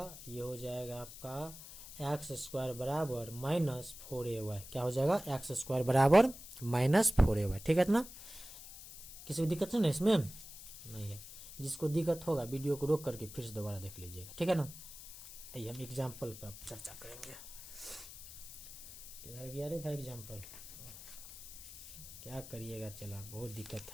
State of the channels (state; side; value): noise; left; hiss, 14 dB below the sound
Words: जाएगा आपका एक्स स्क्वायर बराबर -4ay। क्या हो जाएगा, एक्स स्क्वायर बराबर -4ay। ठीक है इतना, किसी को दिक्कत है ना इसमें, नहीं है। जिसको दिक्कत होगा वीडियो को रोक करके फिर से दोबारा देख लीजिएगा, ठीक है ना। आइए हम एग्जाम्पल पर चर्चा करेंगे। किधर गया रे भाई एग्जाम्पल, क्या करिएगा, चला बहुत दिक्कत